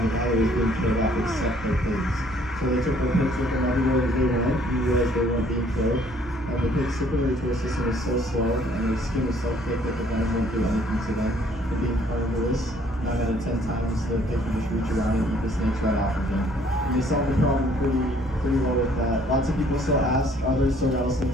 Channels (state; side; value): normal; both; correlation 0.61